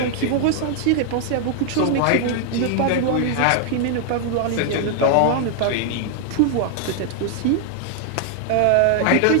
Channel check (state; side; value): different; both; correlation 0.00